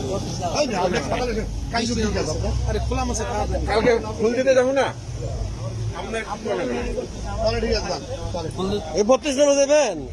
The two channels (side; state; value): both; identical; correlation 1.00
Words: আরে খোলা মাছে কালকে ফুল দিতে যাবো না, ঠিক আছে, এই 32 নম্বর দেবেন।